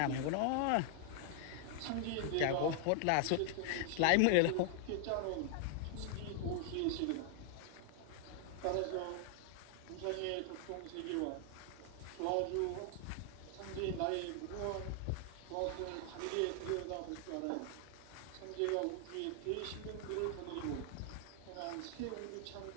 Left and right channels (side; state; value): both; different; correlation 0.00